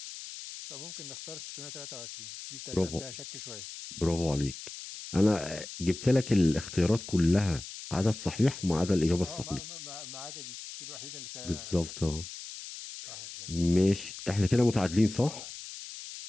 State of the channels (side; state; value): left; noise; hiss, 11 dB below the sound